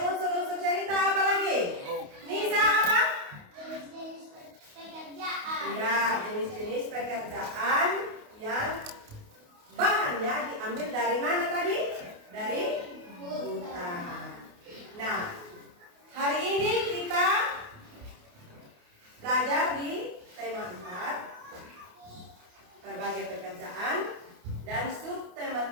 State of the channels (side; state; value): left; late; 28 ms